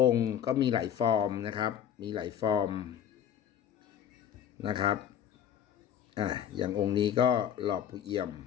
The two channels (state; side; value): quieter; right; 9.4 dB